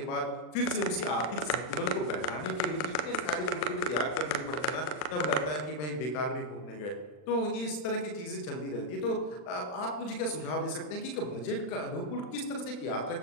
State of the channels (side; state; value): right; late; 39 ms